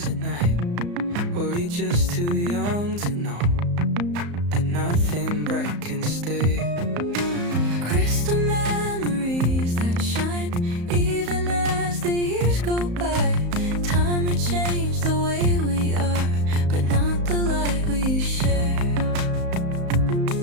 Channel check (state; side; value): late; left; 34 ms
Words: at night. Were we just too young to know that nothing bright can stay? Crystal memories that shine even as the years go by. Time may change the way we are, but not the light we share.